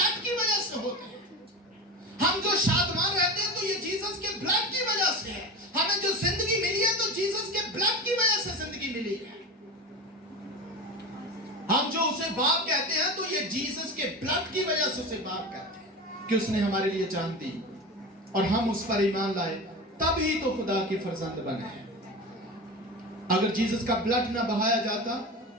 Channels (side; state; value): both; normal; correlation 0.27